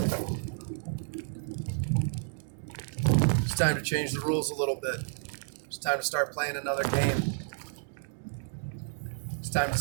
It's time to change the rules a little bit. It's time to start playing another game. It's time to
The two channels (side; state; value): left; silent; digital silence